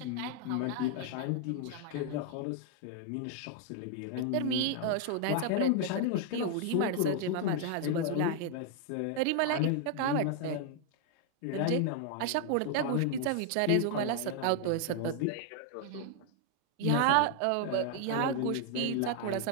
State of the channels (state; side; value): different; both; correlation 0.00